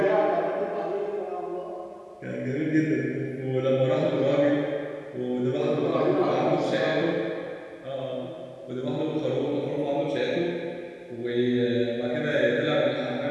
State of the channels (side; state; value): both; identical; correlation 1.00